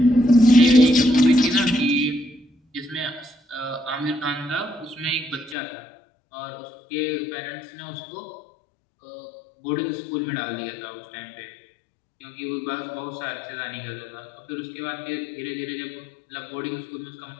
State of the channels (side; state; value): right; drops out; at 5.6 s